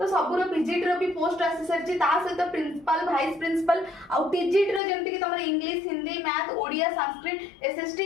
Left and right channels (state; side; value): drops out; right; at 4.8 s